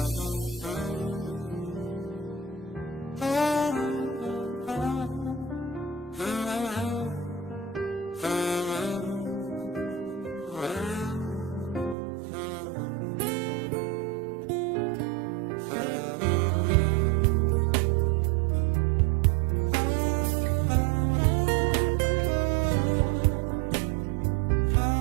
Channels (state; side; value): drops out; left; at 12.0 s